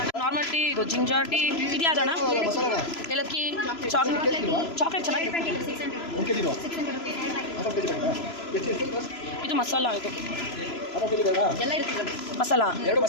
ನಾರ್ಮಲ್ ಟೀ, ಇದು ಜಿಂಜರ್ ಟೀ. ಇದು ಯಾವ್ದಣ್ಣ? ಏಲಕ್ಕಿ, ಚಾಕ್ಲೇಟ್ ಚೆನ್ನಾಗಿದೆ. ಇದು ಮಸಾಲ. ಇದು ಮಸಾಲ.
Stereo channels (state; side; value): late; right; 3.0 ms